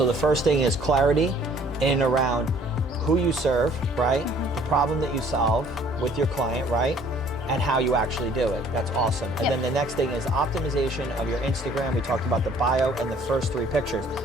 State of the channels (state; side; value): normal; both; correlation 0.57